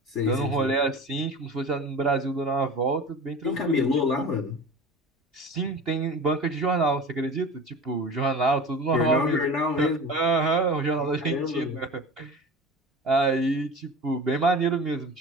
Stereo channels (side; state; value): both; normal; correlation 0.35